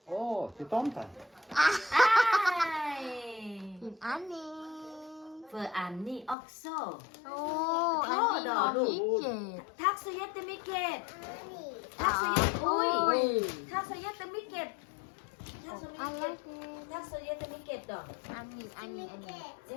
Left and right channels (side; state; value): right; drops out; at 6.4 s